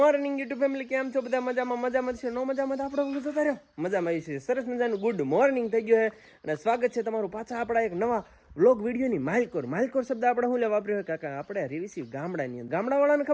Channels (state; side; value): identical; both; correlation 1.00